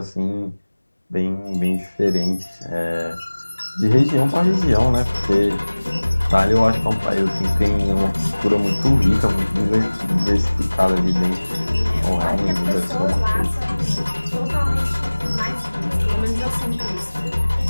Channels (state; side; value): inverted; both; correlation -1.00